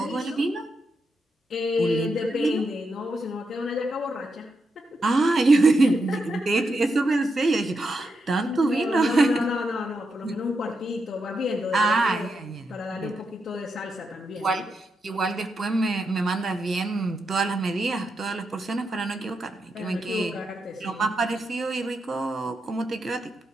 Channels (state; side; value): normal; both; correlation 0.84